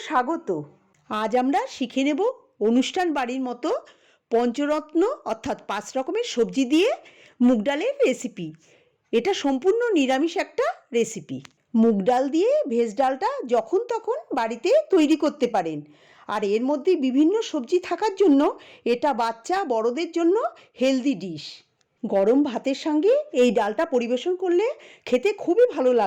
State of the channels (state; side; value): identical; both; correlation 1.00